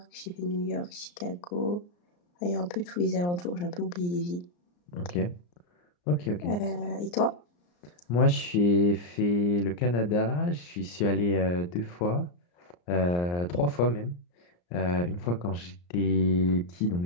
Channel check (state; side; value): late; right; 34 ms